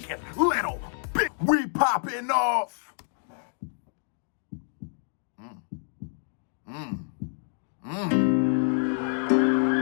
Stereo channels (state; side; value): silent; right; 59 dB below the other